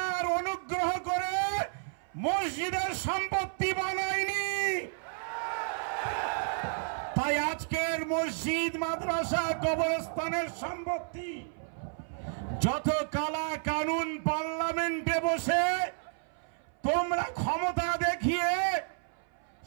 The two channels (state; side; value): silent; left; 57 dB below the other